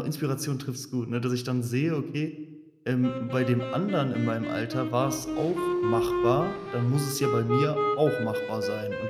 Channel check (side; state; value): both; identical; correlation 1.00